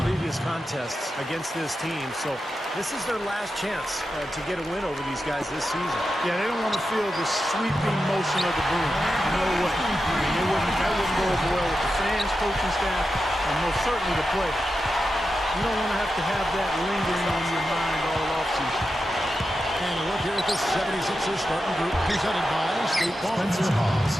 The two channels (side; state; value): both; normal; correlation 0.90